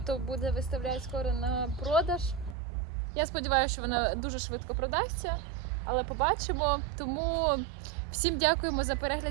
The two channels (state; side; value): drops out; left; at 2.6 s